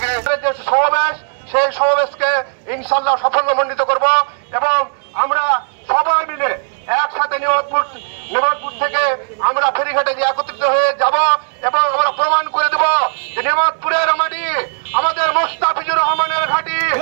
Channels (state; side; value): silent; left; digital silence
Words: যে সমাবেশ, সেই সমাবেশকে ইনশাল্লাহ সাফল্যমণ্ডিত করব এবং আমরা সবাই মিলে একসাথে নিয়ামতপুর থেকে আমরা ফেরিঘাটে যে একত্রিত হয়ে যাব এবং আমরা প্রমাণ করে দেব যে নিয়ামতপুরের মাটি আমাদের মুস্তাফিজুর রহমানের ঘাঁটি।